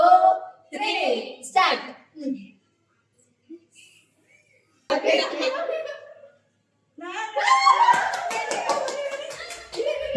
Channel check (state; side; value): identical; both; correlation 1.00